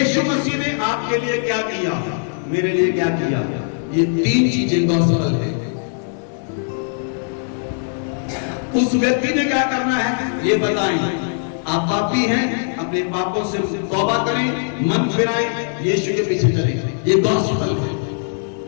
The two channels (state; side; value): silent; right; digital silence